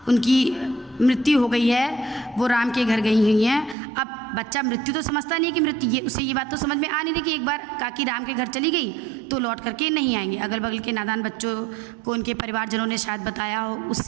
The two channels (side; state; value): left; drops out; at 3.8 s